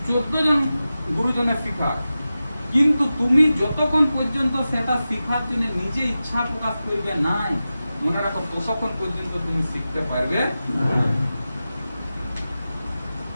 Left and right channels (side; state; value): both; inverted; correlation -0.94